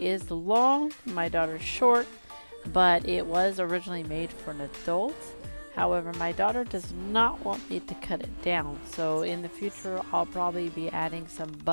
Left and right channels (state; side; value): inverted; both; correlation -1.00